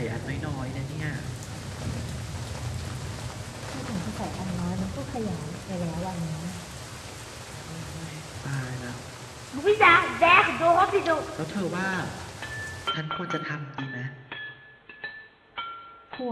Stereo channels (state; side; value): identical; both; correlation 1.00